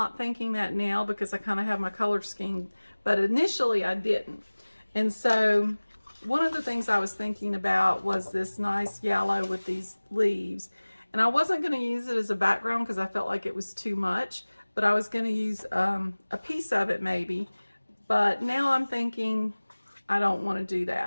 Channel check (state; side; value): inverted; both; correlation -1.00